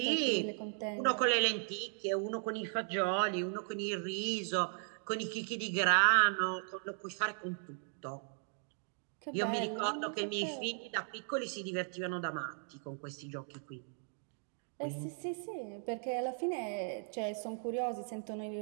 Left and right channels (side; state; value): left; silent; 53 dB below the other